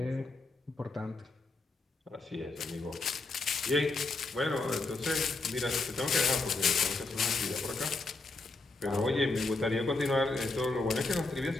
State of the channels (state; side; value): quieter; right; 3.4 dB